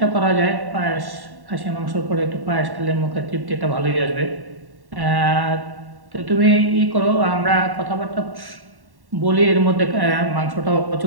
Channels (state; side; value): late; left; 1.1 ms